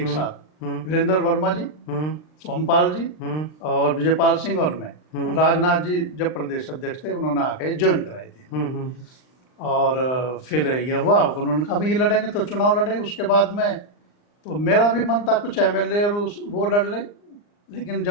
साथ, वीरेंद्र वर्मा जी, सोमपाल जी और विजयपाल सिंह और मैं। राजनाथ जी जब प्रदेश अध्यक्ष थे उन्होंने आके ज्वाइन कराई थी। और फिर यह हुआ, उन्होंने कहा भाई ये लड़ेंगे तो चुनाव लड़े। उसके बाद में तो मेरा भी मन था कुछ एमएलए और वो लड़ ले, लेकिन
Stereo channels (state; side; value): late; right; 39 ms